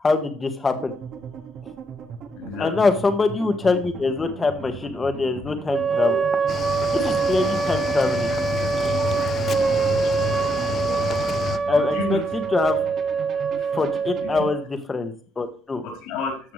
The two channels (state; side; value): normal; both; correlation 0.78